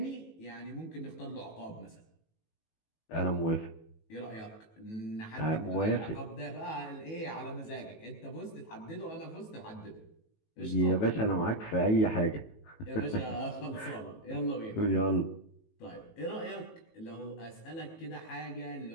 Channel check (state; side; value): late; right; 18 ms